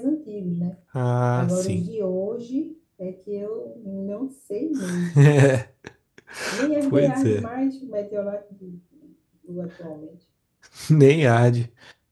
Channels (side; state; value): both; identical; correlation 1.00